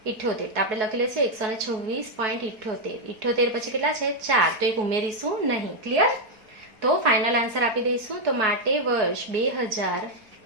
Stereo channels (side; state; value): left; late; 4.4 ms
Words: તો આપણે લખી લઈશું 126.78. 78 પછી કેટલા છે? 4. તો એક ઉમેરીશું નહીં. ક્લિયર? તો ફાઇનલ આન્સર આપી દઈશું. તો માટે વર્ષ